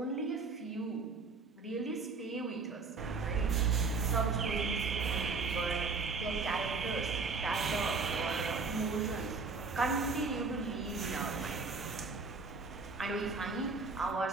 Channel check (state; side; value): quieter; left; 4.3 dB